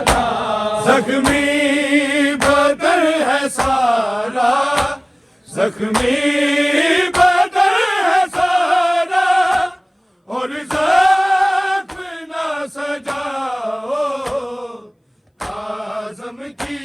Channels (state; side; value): identical; both; correlation 1.00